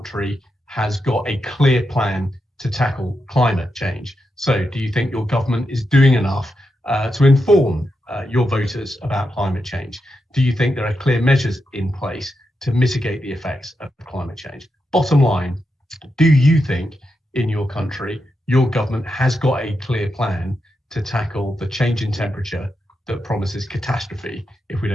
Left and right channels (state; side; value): normal; both; correlation 0.86